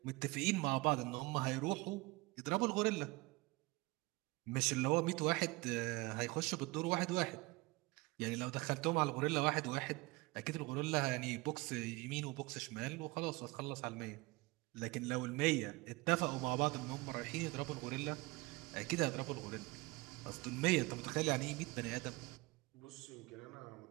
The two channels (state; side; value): quieter; left; 23.6 dB